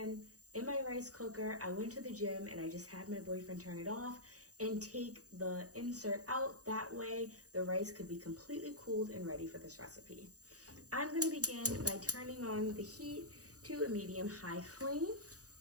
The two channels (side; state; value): left; late; 0.67 ms